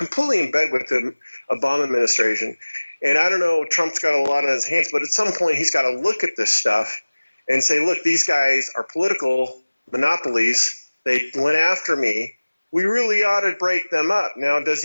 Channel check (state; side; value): inverted; both; correlation -1.00